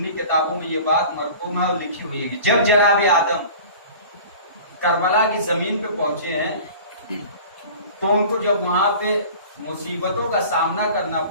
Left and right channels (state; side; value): inverted; both; correlation -0.41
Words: کتابوں میں یہ بات مرقوم ہے اور لکھی ہوئی ہے کہ جب جناب آدم کربلا کی زمین پہ پہنچے ہیں تو ان کو جب وہاں پہ مصیبتوں کا سامنا کرنا